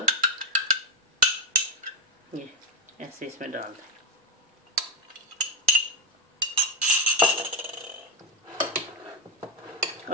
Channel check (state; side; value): normal; both; correlation 0.08